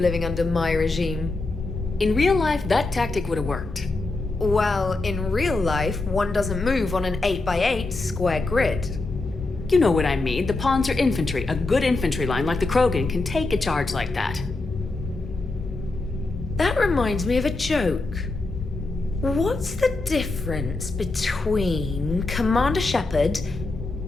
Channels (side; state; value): right; quieter; 3.3 dB